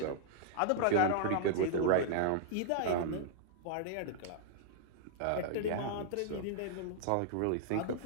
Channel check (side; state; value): both; different; correlation -0.01